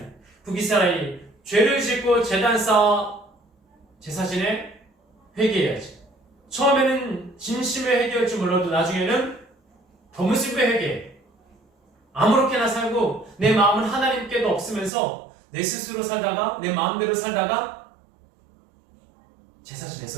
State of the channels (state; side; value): drops out; left; at 14.9 s